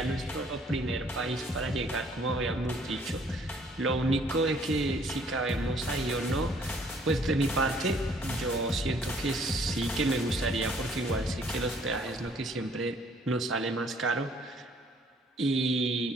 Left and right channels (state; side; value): normal; both; correlation 0.61